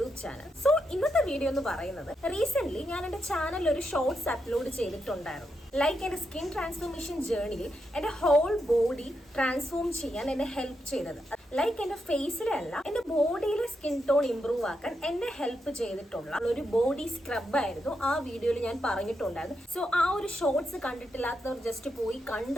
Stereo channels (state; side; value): normal; both; correlation 0.84